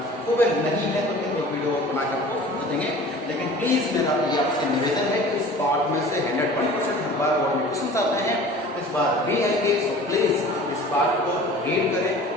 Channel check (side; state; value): both; normal; correlation 0.43